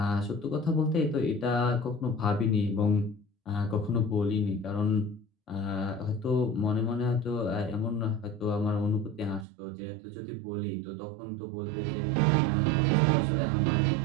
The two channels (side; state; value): left; drops out; at 9.5 s